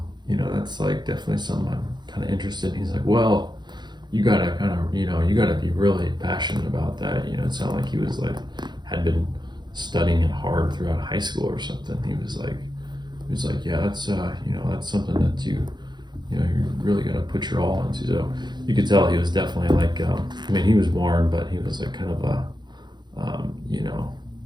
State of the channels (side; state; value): left; late; 0.21 ms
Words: You know, that's like definitely something I'm kind of interested in. He's like, well, you gotta you gotta be really passionate about that. You know, it sounded like he was like, had been studying it hard throughout high school or something. He was like, yeah, that's, that's something that you really gotta put your all into. So you could tell he was definitely like, he was warm, but he was like kind of a,